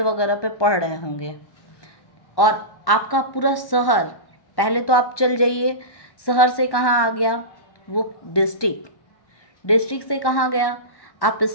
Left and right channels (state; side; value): late; right; 1.1 ms